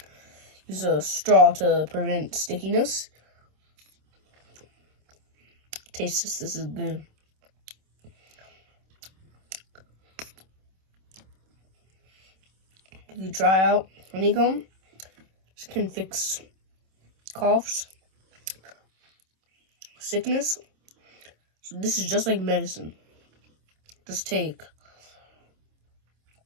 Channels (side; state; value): left; late; 26 ms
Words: use a straw to prevent stickiness. Taste this is good. If you try out honeycomb, this can fix coughs, sickness. So this is just like medicine. Just take